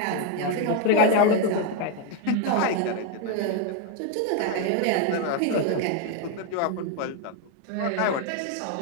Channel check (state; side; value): different; both; correlation 0.01